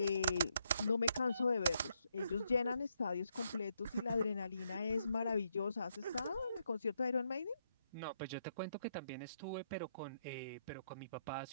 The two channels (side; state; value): both; inverted; correlation -0.77